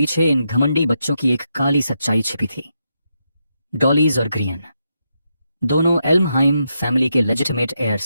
इन घमंडी बच्चों की एक काली सच्चाई छिपी थी। डॉलीज और ग्रियन दोनों एल्महाइम फैमिली के लेजिटिमेट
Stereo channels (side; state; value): both; inverted; correlation -0.83